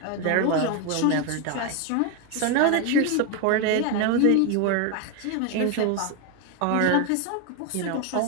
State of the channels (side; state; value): both; different; correlation 0.01